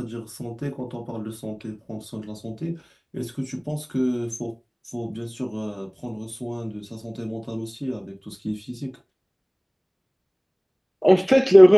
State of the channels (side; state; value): both; identical; correlation 1.00